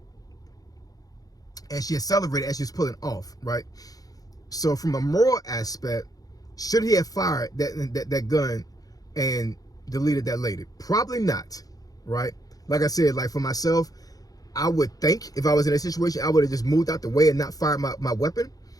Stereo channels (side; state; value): right; late; 0.18 ms